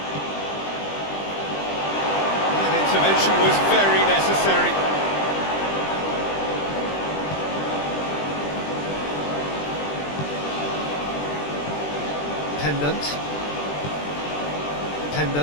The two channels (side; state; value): right; late; 20 ms